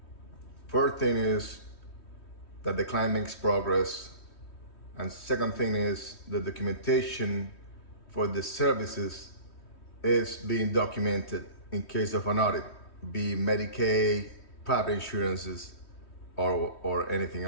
First thing is that the client makes progress, and second thing is the documentation for the services is being documented in case of an audit, be Medicaid, private insurances, or anything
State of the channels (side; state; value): right; late; 3.1 ms